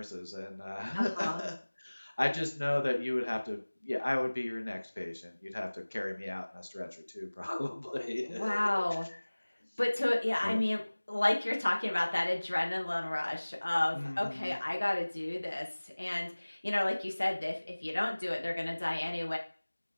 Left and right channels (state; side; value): inverted; both; correlation -1.00